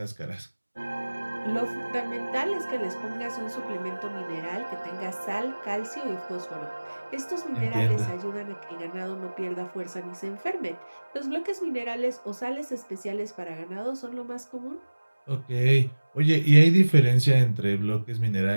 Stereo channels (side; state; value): both; inverted; correlation -1.00